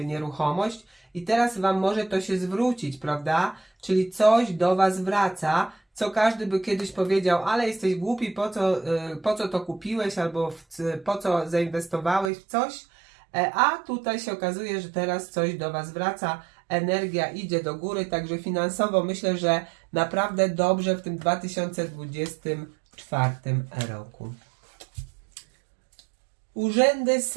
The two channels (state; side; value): drops out; left; at 12.3 s